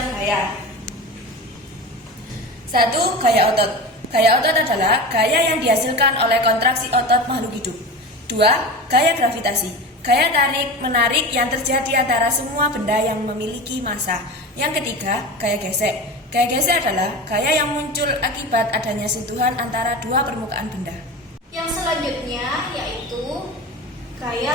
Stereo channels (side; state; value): both; normal; correlation 0.29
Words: gaya. 1. Gaya otot. Gaya otot adalah gaya yang dihasilkan oleh kontraksi otot makhluk hidup. 2. Gaya gravitasi. Gaya tarik-menarik yang terjadi antara semua benda yang memiliki massa. Yang ketiga, gaya gesek. Gaya gesek adalah gaya yang muncul akibat adanya sentuhan antara dua permukaan benda. Yang selanjutnya yaitu gaya